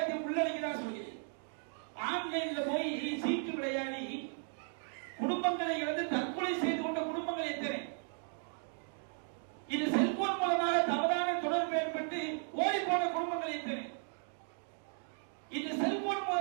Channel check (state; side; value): silent; left; 54 dB below the other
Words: உள்ளடக்கிதான் சொல்கிறேன், ஆன்லைன்ல போய் சீட்டு விளையாடி குடும்பங்களை இழந்து தற்கொலை செய்து கொண்ட குடும்பங்கள் எத்தனை. இது செல்போன் மூலமாக தவறான தொடர்பு ஏற்பட்டு ஓடி போன குடும்பங்கள் எத்தனை. இந்த செல்போன்